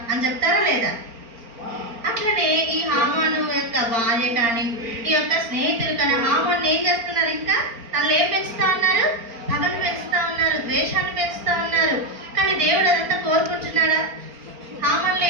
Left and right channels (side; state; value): left; late; 4.4 ms